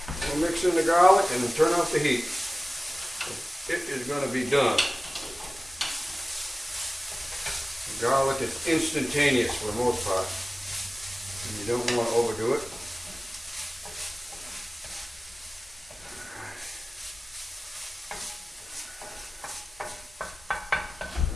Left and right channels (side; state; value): both; normal; correlation 0.97